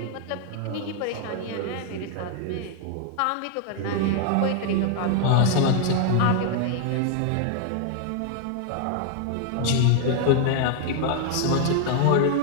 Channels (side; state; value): both; different; correlation 0.00